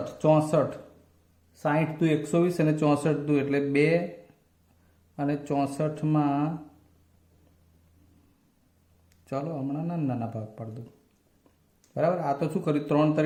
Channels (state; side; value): identical; both; correlation 1.00